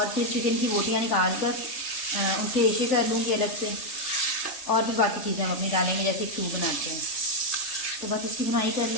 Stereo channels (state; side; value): late; right; 3.3 ms